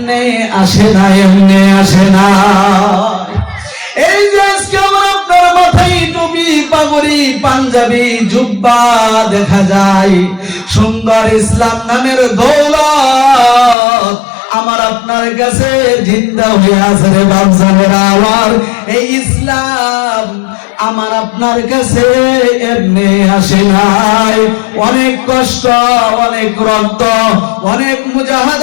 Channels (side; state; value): right; drops out; at 13.8 s